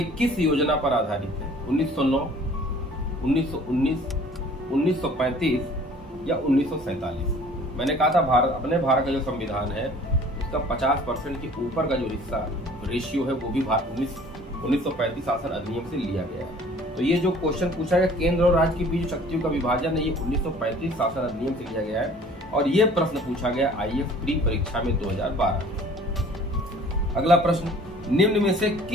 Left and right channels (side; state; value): both; normal; correlation 0.51